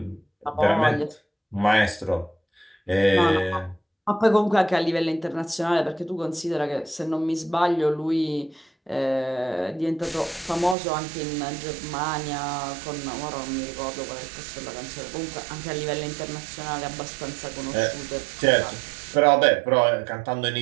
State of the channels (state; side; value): drops out; left; at 10.8 s